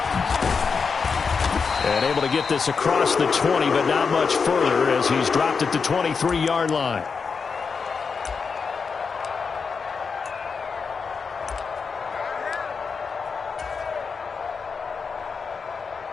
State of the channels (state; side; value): quieter; right; 5.4 dB